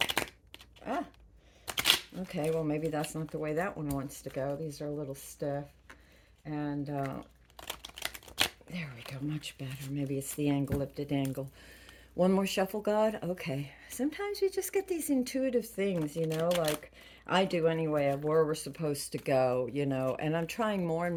Ah, okay, well, maybe that's not the way that one wants to go. These are a little stiff, and there we go, much better. Maybe it's the angle of the dangle. One more shuffle, God? Okay. Sometimes we just get these intuitive things, like I do anyway, of where we're supposed to go, and I'm trying more and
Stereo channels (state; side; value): identical; both; correlation 1.00